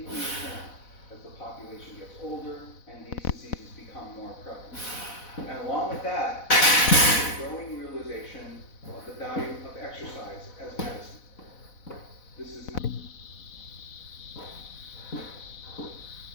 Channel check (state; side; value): late; right; 4.0 ms